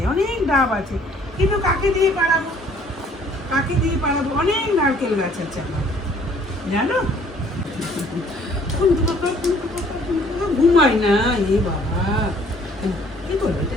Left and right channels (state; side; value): normal; both; correlation 0.59